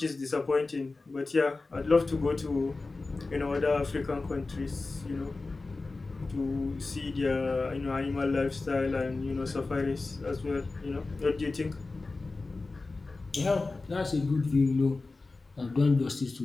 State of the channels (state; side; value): quieter; right; 3.6 dB